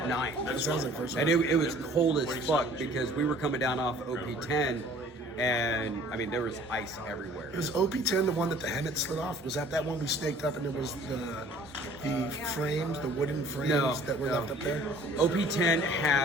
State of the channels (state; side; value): normal; both; correlation 0.52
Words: night. And it was cold as fuck because we were coming down off OP-10 and I mean there was ice everywhere. Was OP-10 the one that the helmet slid off? Was that one we snaked up and it was the frames, the wooden frames that were left up there? OP-10